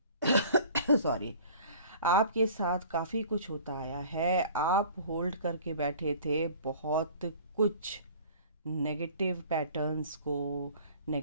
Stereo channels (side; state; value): both; inverted; correlation -0.47